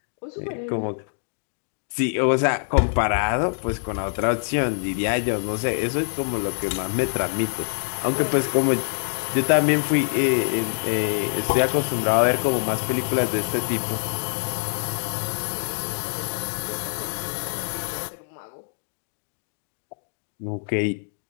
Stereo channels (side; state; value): right; silent; digital silence